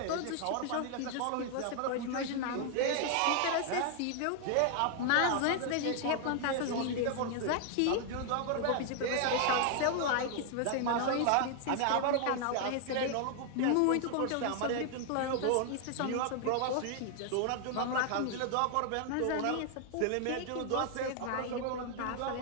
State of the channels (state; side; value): different; both; correlation 0.00